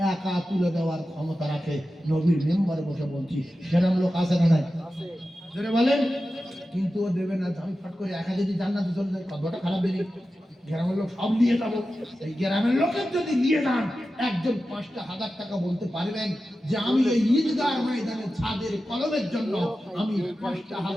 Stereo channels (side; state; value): both; normal; correlation 0.93